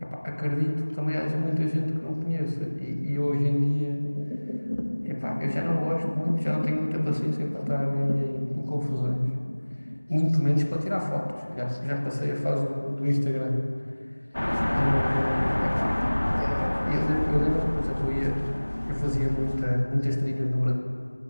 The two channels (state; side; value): inverted; both; correlation -1.00